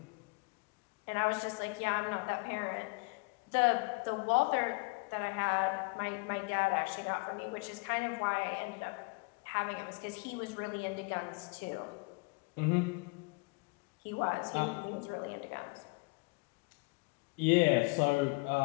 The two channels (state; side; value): quieter; right; 30.1 dB